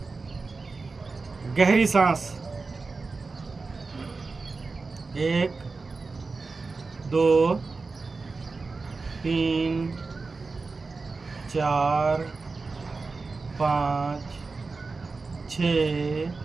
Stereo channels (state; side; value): quieter; left; 4.1 dB